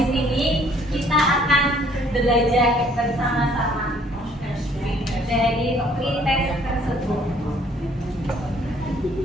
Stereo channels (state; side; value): normal; both; correlation 0.61